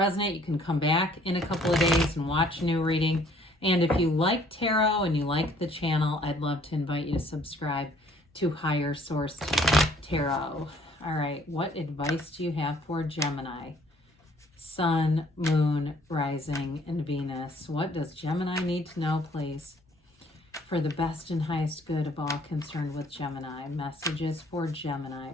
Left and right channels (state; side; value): normal; both; correlation 0.60